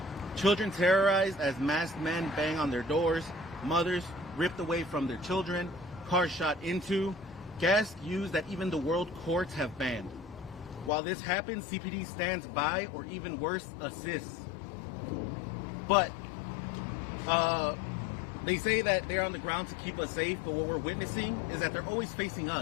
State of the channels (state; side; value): drops out; right; at 10.9 s